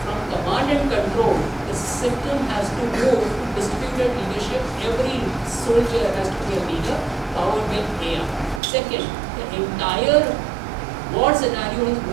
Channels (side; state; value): left; drops out; at 8.6 s